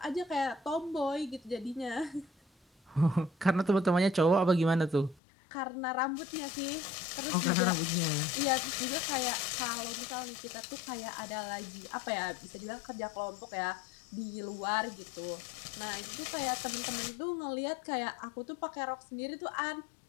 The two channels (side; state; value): right; drops out; at 5.2 s